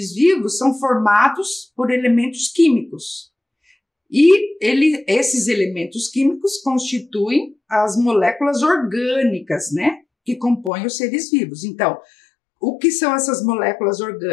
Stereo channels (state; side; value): drops out; right; at 10.7 s